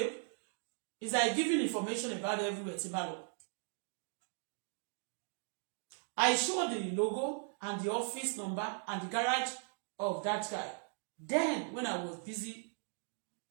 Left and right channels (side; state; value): left; silent; 52 dB below the other